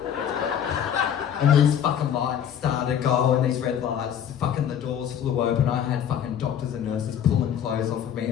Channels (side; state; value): right; quieter; 9.1 dB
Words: And these fucking lights started going, these red lights, fucking the doors flew open. I had fucking doctors and nurses pulling clothes off of